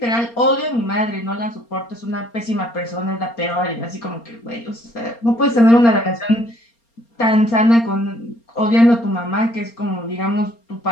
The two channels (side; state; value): right; late; 4.3 ms